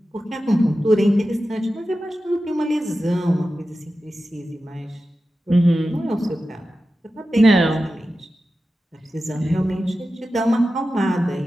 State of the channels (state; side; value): normal; both; correlation 0.93